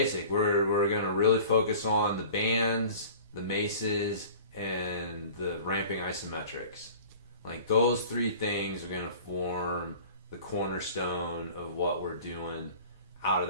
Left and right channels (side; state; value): both; inverted; correlation -0.43